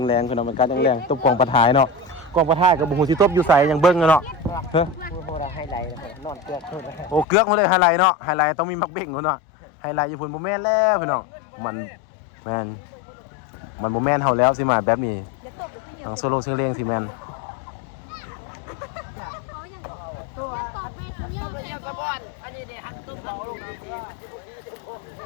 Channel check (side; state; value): right; drops out; at 7.2 s